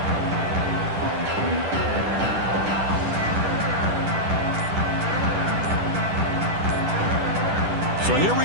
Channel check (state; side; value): late; left; 10 ms